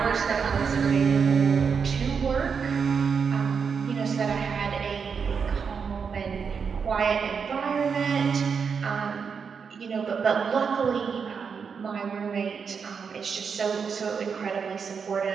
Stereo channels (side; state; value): left; quieter; 6.1 dB